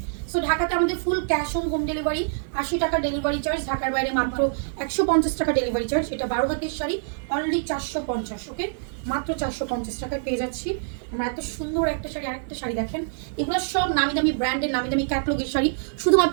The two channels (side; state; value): left; silent; digital silence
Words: সো ঢাকাতে আমাদের full cash on home delivery, 80 টাকা ডেলিভারি চার্জ। ঢাকার বাইরে মাত্র 150 টাকা ডেলিভারি চার্জ। এটা 12 হাতের শাড়ি, অনলি 450। ওকে, মাত্র 450 টাকায় পেয়ে যাচ্ছি আমরা এত সুন্দর একটা শাড়ি। আরেকটা শাড়ি দেখেন, এগুলো সব নামি দামি ব্র্যান্ডের, নামি দামি ক্যাটলগের শাড়ি।